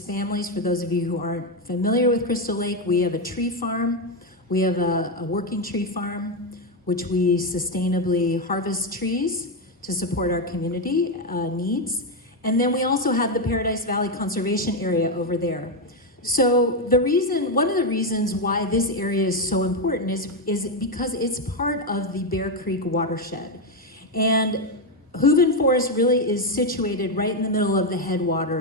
families. For those of you who aren't familiar with Crystal Lake, we have a tree farm. We have a working tree farm, which we sustainably harvest trees to support our community needs. And then we also have the Paradise Valley Conservation Area over there. So one of the reasons why this area is so important is because it's part of the Bear Creek watershed. And Hooven Forest really is situated right in the middle of the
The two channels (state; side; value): normal; both; correlation 0.06